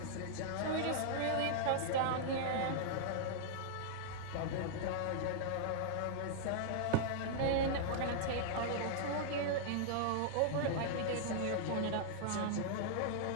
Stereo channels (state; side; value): different; both; correlation -0.01